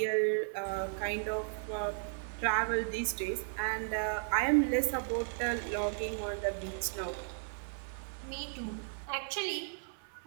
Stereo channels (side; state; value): left; silent; 54 dB below the other